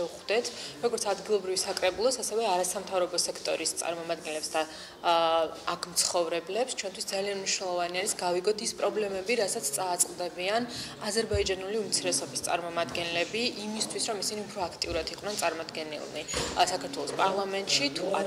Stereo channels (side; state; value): both; identical; correlation 1.00